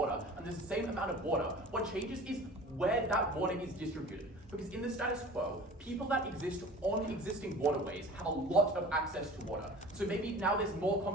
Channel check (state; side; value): normal; both; correlation 0.41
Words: and there's the same amount of water. What changes is where that water is distributed. Because in the status quo, people that exist on existing waterways have a lot of access to water. So maybe now there's more